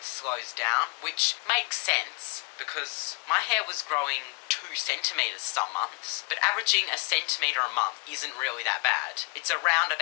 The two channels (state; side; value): quieter; right; 29.8 dB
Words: slows down, which makes sense, because my hair was growing 2 centimeters some months, but averaging a centimeter a month isn't really that bad. It's around